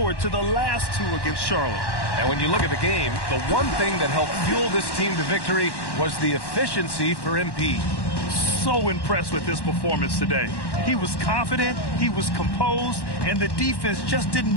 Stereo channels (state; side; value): late; right; 1.1 ms